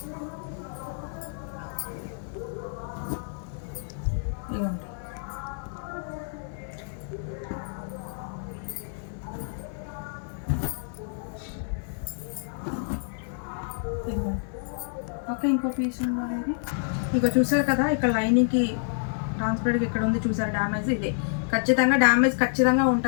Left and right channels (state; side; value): silent; right; 59 dB below the other